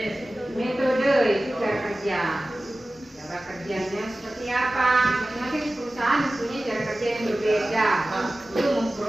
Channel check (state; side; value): normal; both; correlation 0.96